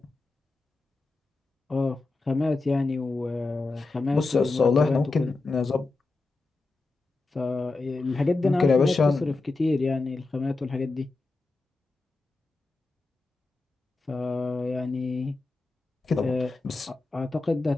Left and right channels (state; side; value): quieter; right; 3.5 dB